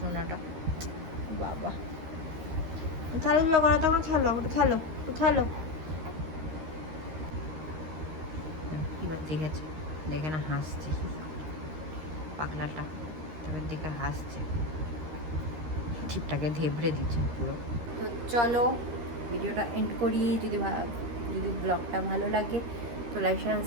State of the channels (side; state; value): left; late; 13 ms